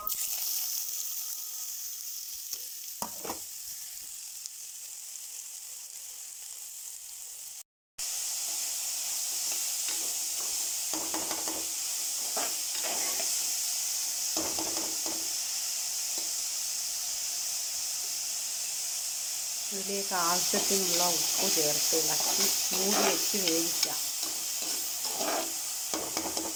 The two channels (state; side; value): identical; both; correlation 1.00